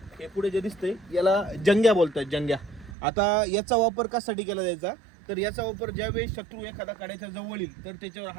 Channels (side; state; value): left; drops out; at 3.0 s